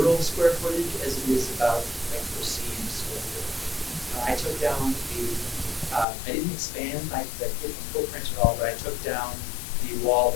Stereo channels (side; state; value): right; drops out; at 6.1 s